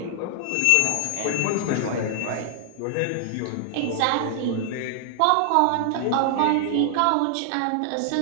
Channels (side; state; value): both; different; correlation -0.01